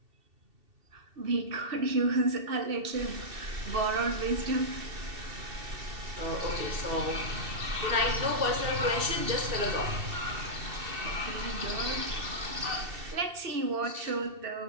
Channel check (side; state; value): left; late; 2.7 ms